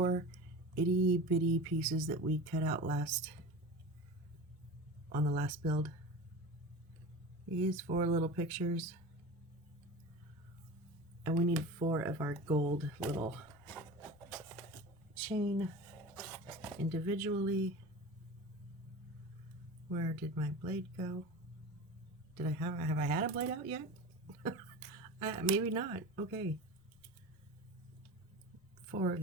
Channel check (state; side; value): normal; both; correlation 0.32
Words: itty bitty pieces that we cut out on the last build? These 4 little pictures. And we need 4 of our gold little chain individually. Where did my blade go? Did I have I had a blade out yet? Maybe not. Okay. 4 of